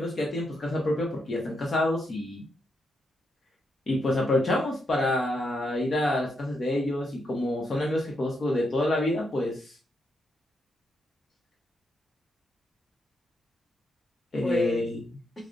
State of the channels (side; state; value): both; normal; correlation 0.81